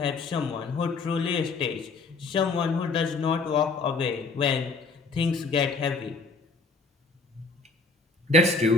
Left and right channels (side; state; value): right; quieter; 4.0 dB